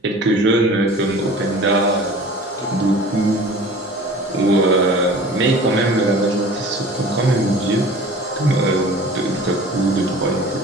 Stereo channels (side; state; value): both; normal; correlation 0.43